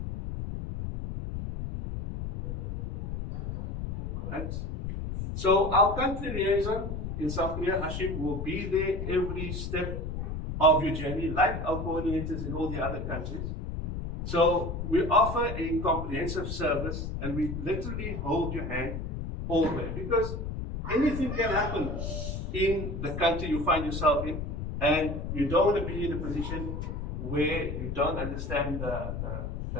Right? So our country liaison in South Korea, Hashim, will be there every step of your journey, like our coordinators in all the other countries. So we offer a comprehensive service and we literally hold your hand all the way, because anything can happen in the country you find yourself in, and you don't want to be in a position where you don't understand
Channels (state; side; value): noise; left; rumble, 5 dB below the sound